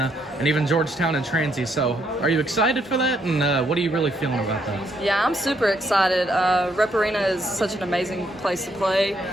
and even Georgetown and Transy. So are you excited for that, and what are you really feeling about that? Yeah, I'm super excited. Rep Arena is such an amazing place to play,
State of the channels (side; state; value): both; normal; correlation 0.73